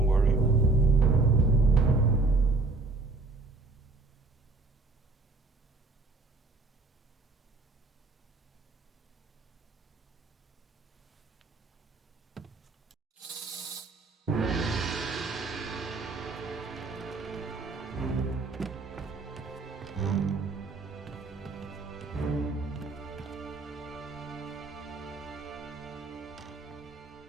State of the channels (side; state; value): left; quieter; 3.5 dB